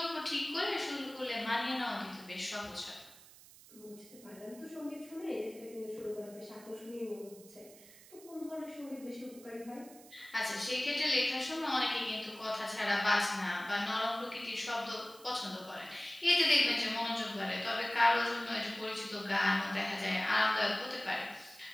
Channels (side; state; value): right; noise; hiss, 21 dB below the sound